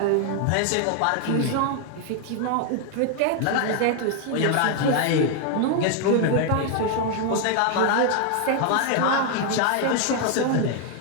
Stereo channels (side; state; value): both; different; correlation 0.00